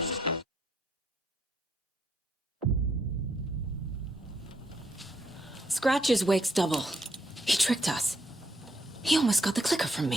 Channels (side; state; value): both; normal; correlation 0.75